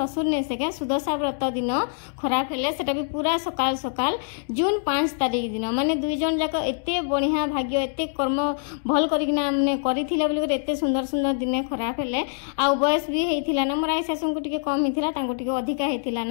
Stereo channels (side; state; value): right; silent; digital silence